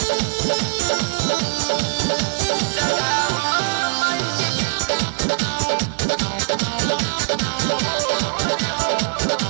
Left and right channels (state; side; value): silent; left; digital silence